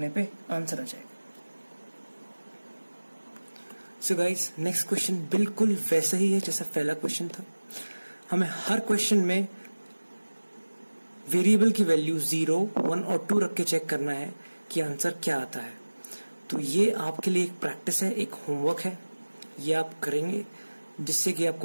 पे आंसर आ जाएगा। सो गाइस नेक्स्ट क्वेश्चन बिल्कुल वैसा ही है जैसा पहला क्वेश्चन था। हमें हर क्वेश्चन में वेरिएबल की वैल्यू 0, 1 और 2 रख के चेक करना है कि आंसर क्या आता है। तो ये आपके लिए एक प्रैक्टिस है, एक होमवर्क है, ये आप करेंगे जिससे कि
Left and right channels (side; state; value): both; inverted; correlation -1.00